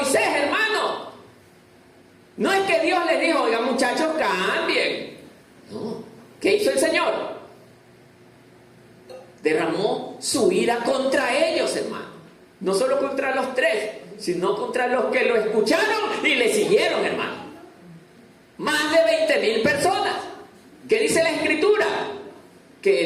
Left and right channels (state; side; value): identical; both; correlation 1.00